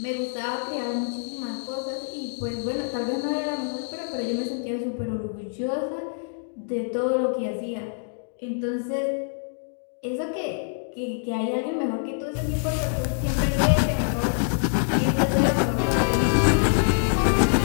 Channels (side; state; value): right; silent; digital silence